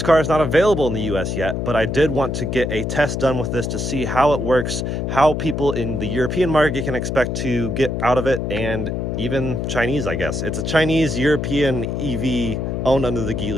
car is not available in the US yet, but I did want to get a test done with this to see how it works, how people in the European market can expect to get out of it, and even Chinese, I guess. It's a Chinese-European EV owned under the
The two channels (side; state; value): left; noise; hum, 2 dB below the sound